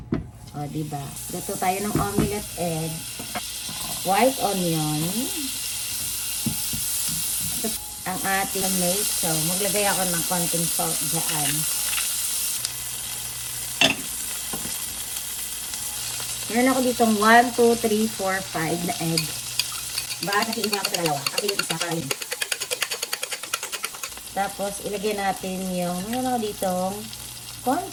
O, diba? Luto tayo ng omelette egg. White onion. Ang ating tomato. Maglagay ako ng konting salt dyan. Meron ako ditong 1, 2, 3, 4, 5 na egg. Bakit nakiiba ako sa dalawa? Ako yung isa para yun. Tapos, ilagay natin yung, meron ako ditong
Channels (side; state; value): both; identical; correlation 1.00